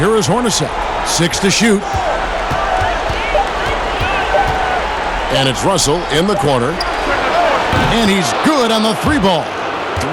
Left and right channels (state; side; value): identical; both; correlation 1.00